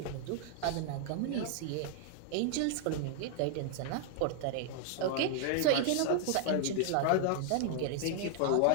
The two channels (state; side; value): different; both; correlation 0.00